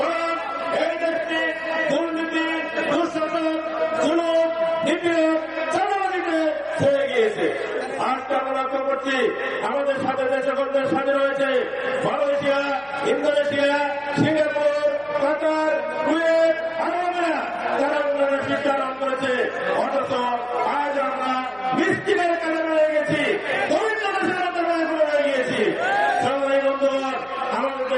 এই দেশটি দুর্নীতি, দুঃশাসন, জুলুম, নিপীড়ন, চাঁদাবাজিতে ছেড়ে গিয়েছে। আজকে আমরা লক্ষ্য করছি আমাদের সাথে যে সকল দেশ স্বাধীন হয়েছে, মালয়েশিয়া, ইন্দোনেশিয়া, সিঙ্গাপুর, কাতার, কুয়েত, আরবেরা, তারা উন্নয়নের শিক্ষা লাভ করেছে। অথচ আজ আমরা মিষ্টিদের কাজে রয়ে গেছি, দরিদ্র দেশের আন্দোলনে রয়ে গিয়েছি। সংগ্রামী বন্ধুগণ, আমাদের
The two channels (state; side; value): noise; right; hum, 29 dB below the sound